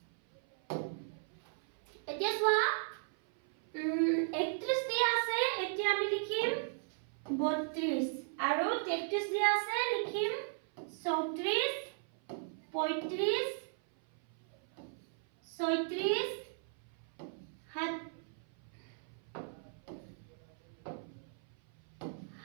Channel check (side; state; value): left; silent; 53 dB below the other